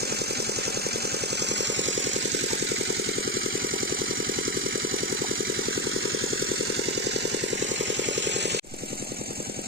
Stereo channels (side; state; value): both; normal; correlation 0.14